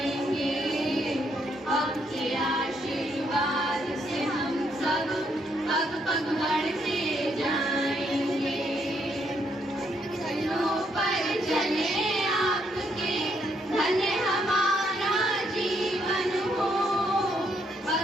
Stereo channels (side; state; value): both; normal; correlation 0.73